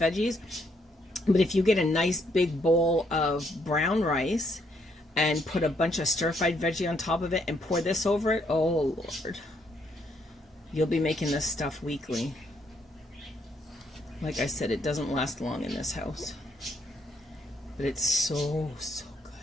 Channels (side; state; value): both; normal; correlation 0.72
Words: But if you get a nice big bowl of brown rice and put a bunch of stir-fried veggie on top of it and pour this over it, oh Lord, you'll be making this stuff weekly. Like I said, it doesn't last long in this house, but it's so good.